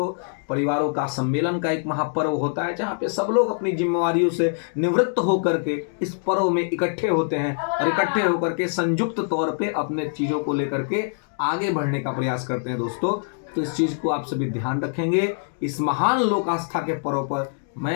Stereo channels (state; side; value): silent; right; digital silence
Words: परिवारों का सम्मेलन का एक महापर्व होता है, जहाँ पे सब लोग अपनी जिम्मेवारियों से निवृत्त होकर के इस पर्व में इकट्ठे होते हैं, और इकट्ठे होकर के संयुक्त तौर पे अपने चीज़ों को लेकर के आगे बढ़ने का प्रयास करते हैं दोस्तों। तो इस चीज़ को आप सभी ध्यान रखेंगे। इस महान लोक आस्था के पर्व पर